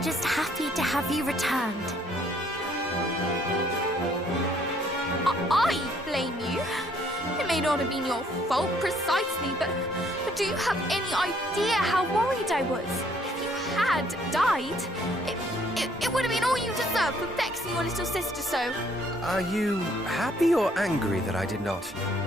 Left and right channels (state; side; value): normal; both; correlation 0.64